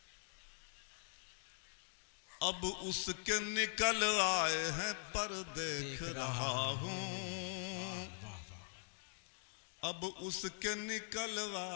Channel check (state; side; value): silent; right; digital silence